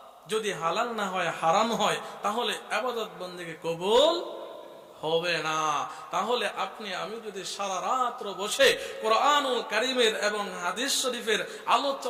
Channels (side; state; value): both; identical; correlation 1.00